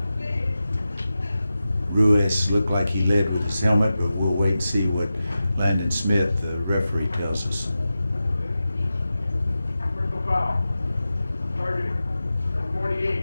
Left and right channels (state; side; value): inverted; both; correlation -0.93